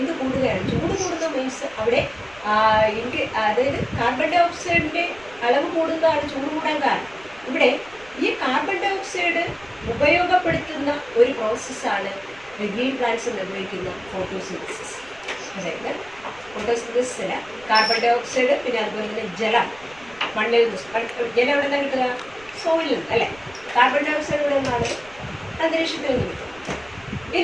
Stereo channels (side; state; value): right; noise; rumble, 25 dB below the sound